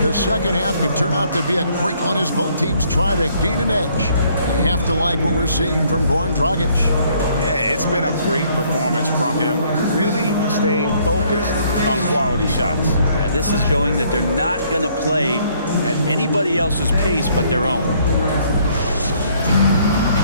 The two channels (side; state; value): both; inverted; correlation -0.65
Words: second half could turn out to be a great one as both teams try to gain an edge. You have to like what we're seeing from Goran Dragic. Yeah, it's been a great performance from him, really staying focused on quality shots. Yeah, this is showing that they're not going to play at anybody else's pace but their own.